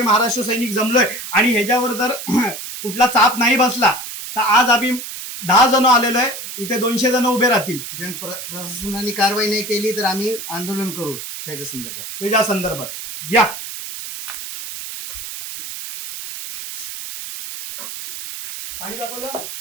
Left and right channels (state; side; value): noise; right; hiss, 9 dB below the sound